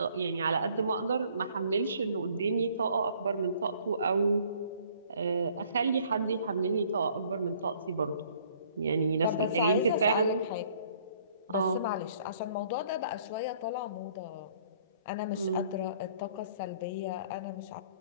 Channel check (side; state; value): both; inverted; correlation -0.59